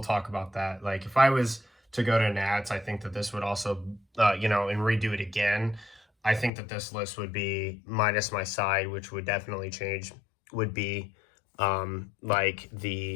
talk about that. Like if I was to go to Nats, I think that this would also, you know, and redo it again. I think that this list would be minus my side, which would definitely change, would be like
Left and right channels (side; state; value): right; drops out; at 6.5 s